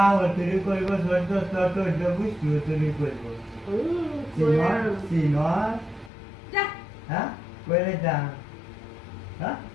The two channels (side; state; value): right; drops out; at 6.1 s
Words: তুই কইব তোর বুঝতে তুই কইব সিনর যা হ্যাঁ কইলে যা হ্যাঁ